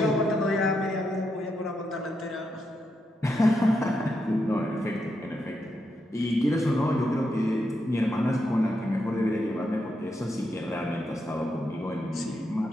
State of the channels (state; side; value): normal; both; correlation 0.83